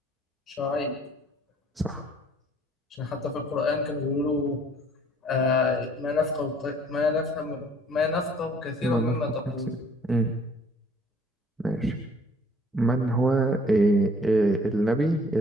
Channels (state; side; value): normal; both; correlation 0.57